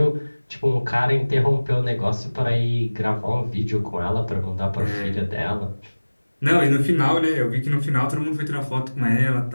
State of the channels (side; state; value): both; inverted; correlation -1.00